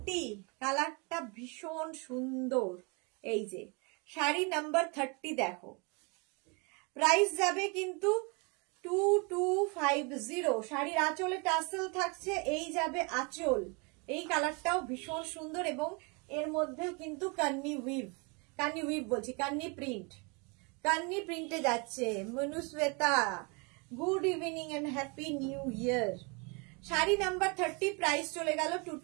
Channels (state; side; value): quieter; left; 31.6 dB